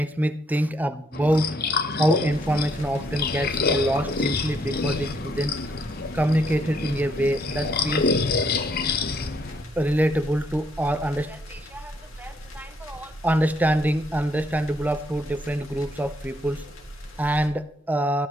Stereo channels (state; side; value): normal; both; correlation 0.71